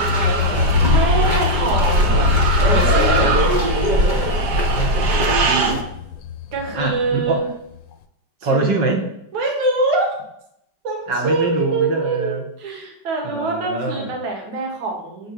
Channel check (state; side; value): late; left; 5.1 ms